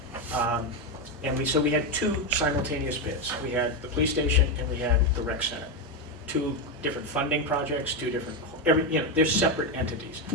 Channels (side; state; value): both; normal; correlation 0.08